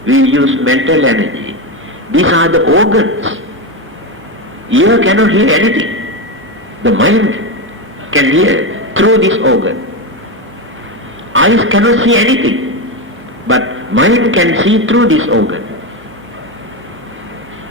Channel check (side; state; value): both; normal; correlation 0.13